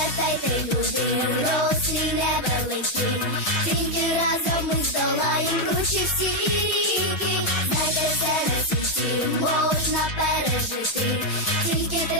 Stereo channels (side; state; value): right; late; 6.3 ms